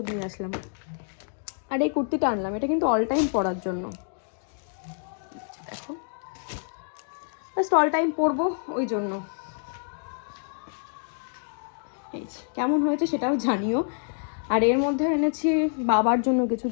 নিয়ে আসলাম। আর এই কুর্তিটা আনলাম, এটা কিন্তু অল টাইম পরার জন্য, দেখো জাস্ট অল টাইম পরবো ওই জন্য। এই কেমন হয়েছে সেটাও জানিও। আর এর মধ্যে এনেছি বাবার জন্য কিছু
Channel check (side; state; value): right; silent; digital silence